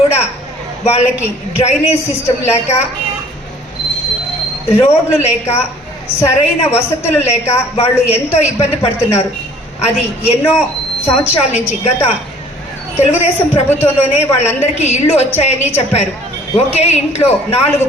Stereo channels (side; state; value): both; normal; correlation 0.54